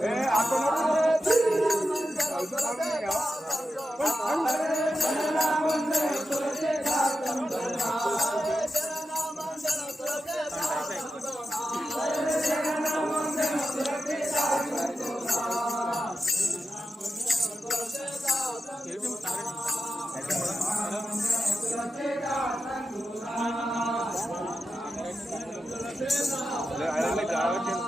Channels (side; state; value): both; normal; correlation 0.90